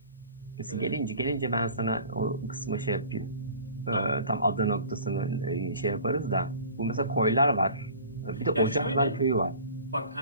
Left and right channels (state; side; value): inverted; both; correlation -0.44